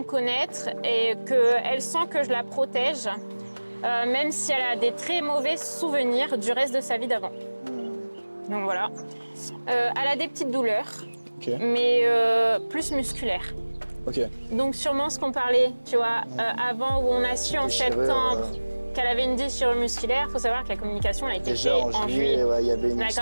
connaître et qu'elle sent que je la protège, même si elle a des très mauvais souvenirs du reste de sa vie d'avant. Donc voilà. Elle a des petites douleurs, mais plus musculaires. Ok. Donc sûrement ce qu'on parlait, tu vois, avant où on a su en septembre qu'elle avait une déchirure musculaire. Il faut savoir que la communication a été faite en juillet. Ouais, il y avait une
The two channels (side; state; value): both; inverted; correlation -1.00